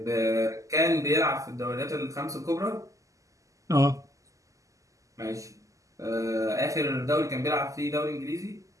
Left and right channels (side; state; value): left; late; 0.16 ms